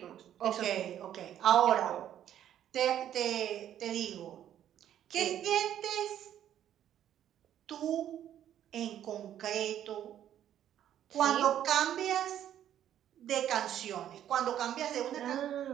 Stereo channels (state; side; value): quieter; left; 10.8 dB